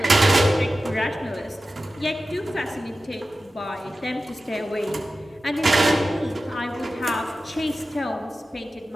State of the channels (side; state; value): both; normal; correlation 0.94